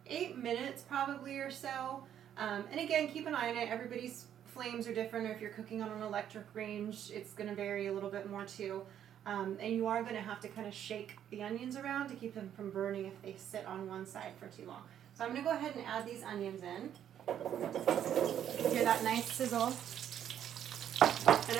8 minutes probably or so. And again, keep an eye on it. Everybody's flames are different, or if you're cooking on an electric range, it's going to vary a little bit more too. And you are going to have to kind of shake the onions around to keep them from burning if they sit on one side for too long. So I'm going to go ahead and add these onions in. Hear that nice sizzle. And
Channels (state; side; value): quieter; left; 10.0 dB